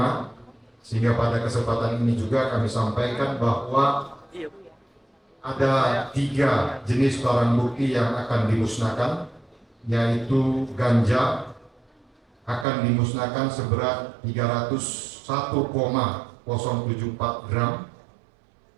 sehingga pada kesempatan ini juga kami sampaikan bahwa ada 3 jenis barang bukti yang akan dimusnahkan, yaitu ganja akan dimusnahkan seberat 301,074 gram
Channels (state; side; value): drops out; left; at 12.7 s